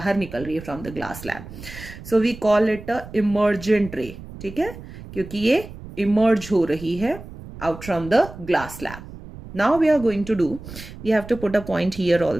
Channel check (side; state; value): right; noise; rumble, 14 dB below the sound